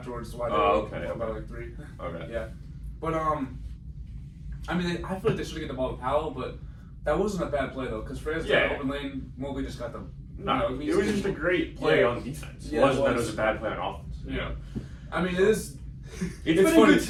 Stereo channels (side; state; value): both; identical; correlation 1.00